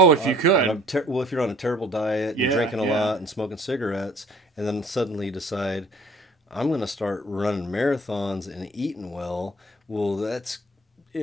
if you could. If you're on a terrible diet, and drinking a lot and smoking cigarettes, and then suddenly you decide, I'm going to start running marathons and eating well. Well, that's,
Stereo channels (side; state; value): both; normal; correlation 0.54